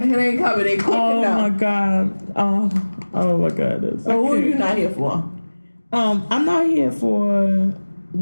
It ain't coming. They cooking Oh my God. Oh my God. So who are you not here for? I'm not here for.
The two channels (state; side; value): inverted; both; correlation -1.00